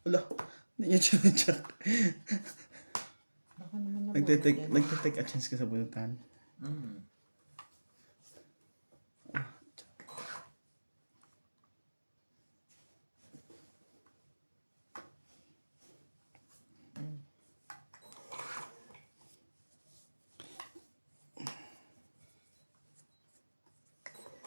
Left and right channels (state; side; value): inverted; both; correlation -1.00